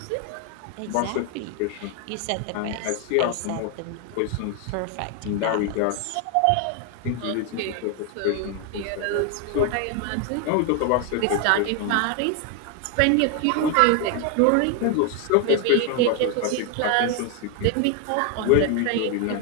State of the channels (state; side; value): different; both; correlation 0.01